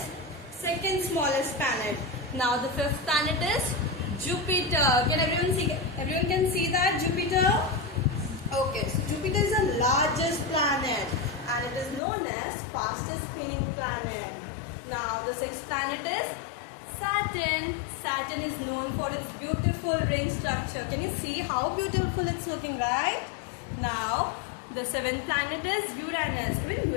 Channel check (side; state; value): right; drops out; at 12.0 s